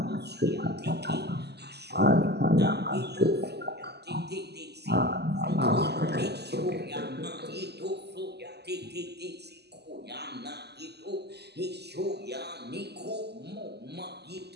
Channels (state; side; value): late; left; 0.49 ms